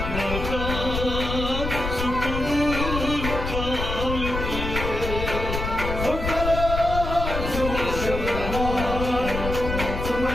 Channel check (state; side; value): noise; left; rumble, 4 dB below the sound